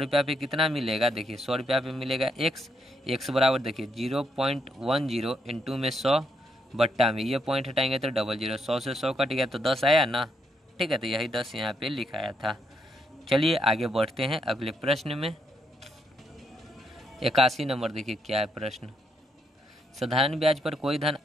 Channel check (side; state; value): both; normal; correlation 0.77